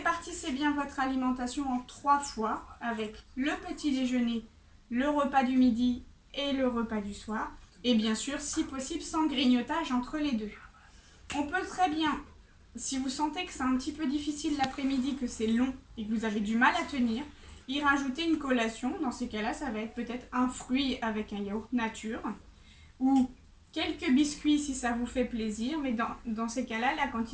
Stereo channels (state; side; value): identical; both; correlation 1.00